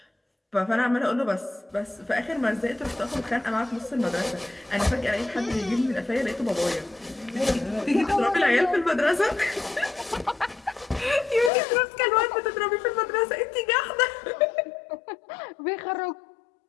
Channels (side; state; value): right; drops out; at 11.5 s